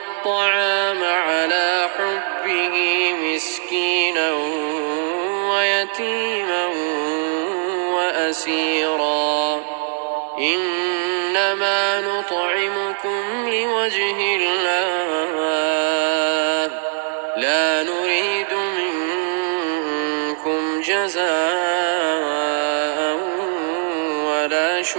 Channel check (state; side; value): silent; left; digital silence